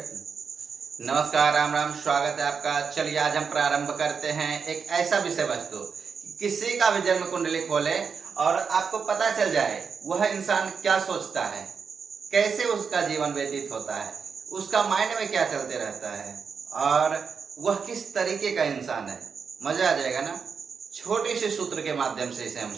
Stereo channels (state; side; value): quieter; left; 5.9 dB